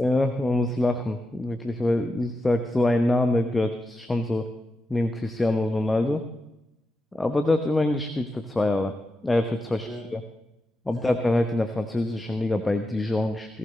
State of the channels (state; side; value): normal; both; correlation 0.88